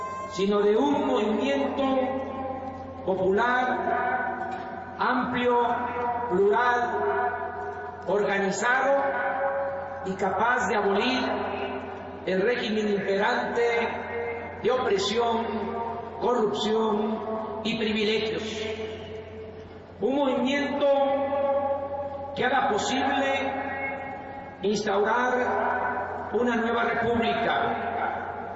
sino de un movimiento popular, amplio, plural, organizado y capaz de abolir el régimen imperante de opresión, corrupción y privilegios. Un movimiento que haga posible instaurar una nueva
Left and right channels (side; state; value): both; identical; correlation 1.00